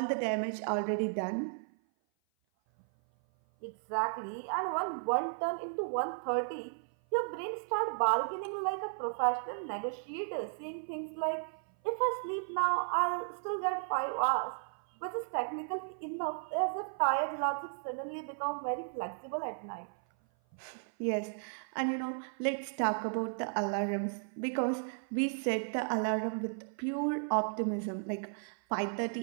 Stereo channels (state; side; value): silent; left; 55 dB below the other